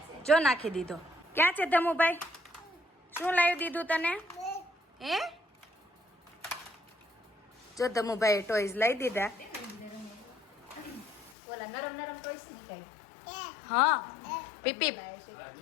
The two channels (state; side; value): drops out; right; at 11.4 s